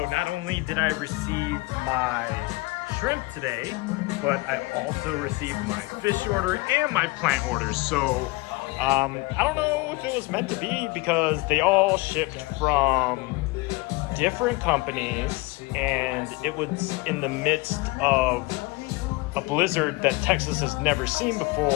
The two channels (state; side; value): quieter; right; 23.5 dB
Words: not only did I receive my shrimp today, but I also received my fish order and my plant orders. So I don't know if it was meant to be because they all shipped from different companies and it was in the midst of a blizzard that Texas has never seen